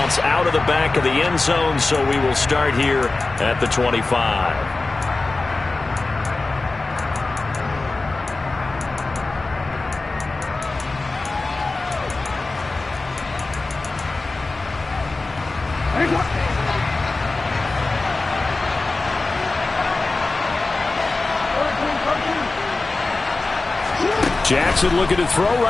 out of the back of the end zone, so we will start here at the 25. Jackson looking to throw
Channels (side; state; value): right; quieter; 3.4 dB